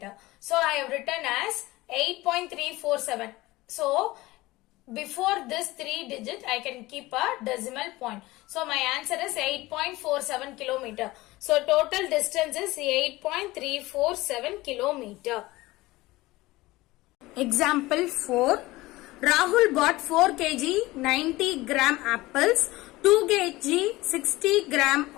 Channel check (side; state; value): right; quieter; 19.5 dB